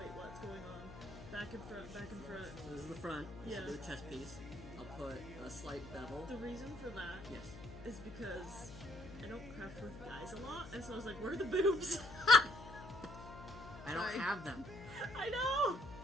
what's going on? Back and front, back and front. So this is the front, this is the chest piece. I'll put a slight bevel. The reason for that is because I don't craft with guys a lot, and so I was like, where are the boobs? I don't have them. I know!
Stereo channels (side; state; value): left; noise; hum, 14 dB below the sound